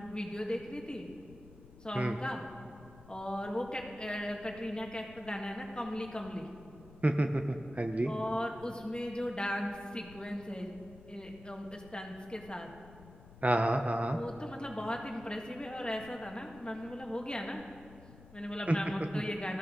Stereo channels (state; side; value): noise; left; rumble, 19 dB below the sound